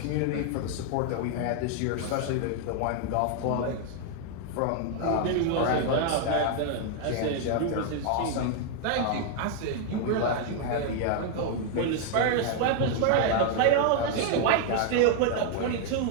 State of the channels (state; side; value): different; both; correlation 0.00